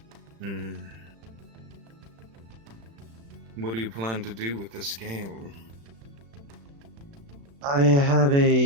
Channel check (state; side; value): late; left; 35 ms